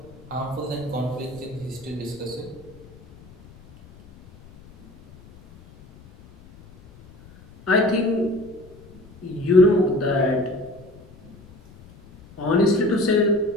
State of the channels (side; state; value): left; noise; rumble, 23 dB below the sound